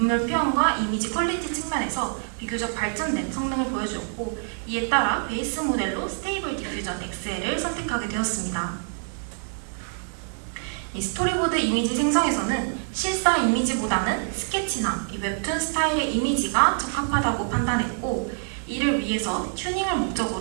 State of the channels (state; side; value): silent; left; 61 dB below the other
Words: 표현과 이미지 퀄리티 측면에서 비교적 발전된 성능을 보여주었고 이에 따라 베이스 모델로 스테이블 디퓨전 XL을 선택하게 되었습니다. 이 스토리보드 이미지 생성에서는 실사 이미지보다는 스케치나 이 웹툰 스타일의 이미지가 적합하다고 판단했고 이를 위해서 튜닝을